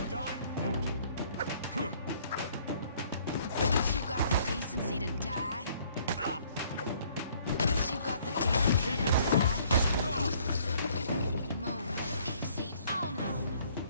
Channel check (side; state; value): both; inverted; correlation -0.61